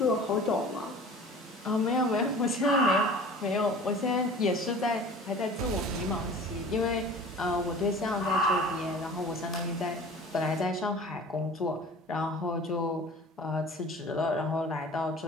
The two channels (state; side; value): normal; both; correlation 0.42